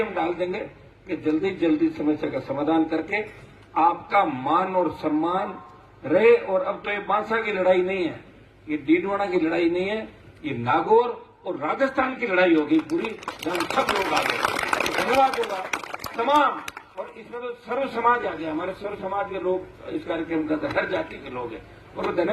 हम डाल देंगे कि जल्दी समस्या का समाधान करके आपका मान और सम्मान रहे। और अब तो ये बांसा की लड़ाई नहीं है, ये डीडवाना की लड़ाई नहीं है, ये नागौर और राजस्थान की लड़ाई होगी पूरी, जहां सब लोग आ गए। धन्यवाद होगा तमाम, और इसमें तो सर्व समाज आ गया, हमारे सर्व समाज के लोग इस कार्यक्रम का हर जाति के लोग हैं। और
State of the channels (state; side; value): identical; both; correlation 1.00